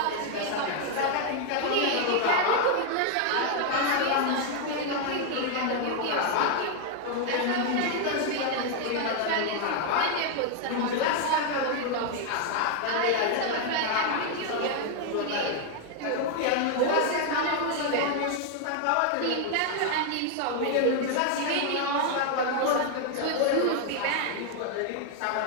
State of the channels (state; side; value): different; both; correlation 0.00